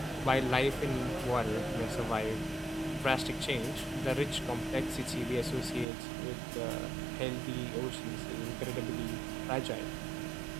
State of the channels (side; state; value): left; drops out; at 5.9 s